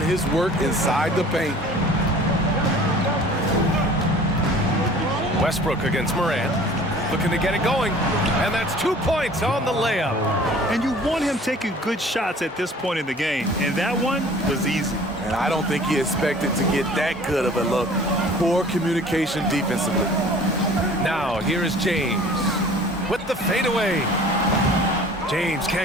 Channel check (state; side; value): normal; both; correlation 0.48